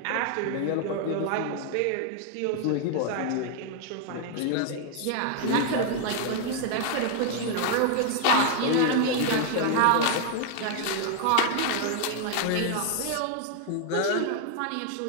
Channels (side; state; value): both; different; correlation 0.00